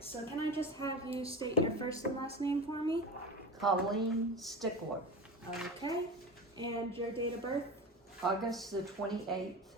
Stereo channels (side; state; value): both; normal; correlation 0.28